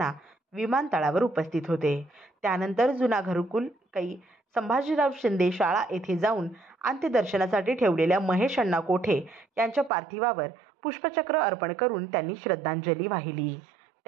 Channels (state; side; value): drops out; left; at 9.9 s